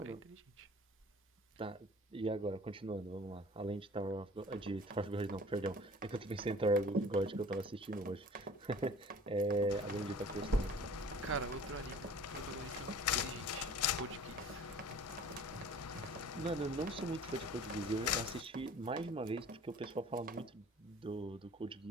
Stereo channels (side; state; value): both; normal; correlation 0.47